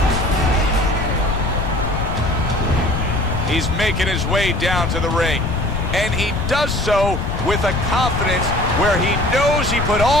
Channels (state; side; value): noise; left; rumble, 3 dB below the sound